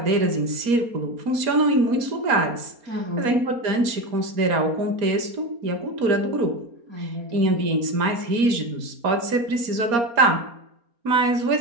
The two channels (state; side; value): late; left; 4.3 ms